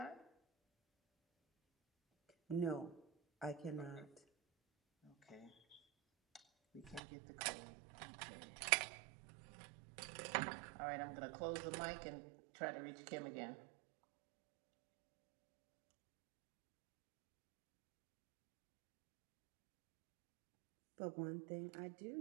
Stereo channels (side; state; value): left; drops out; at 7.0 s